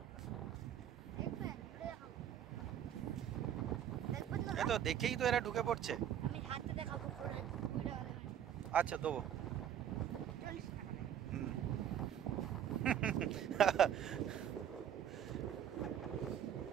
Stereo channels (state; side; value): quieter; left; 9.8 dB